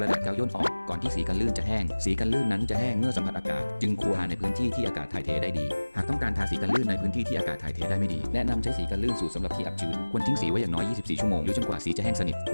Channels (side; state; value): both; inverted; correlation -1.00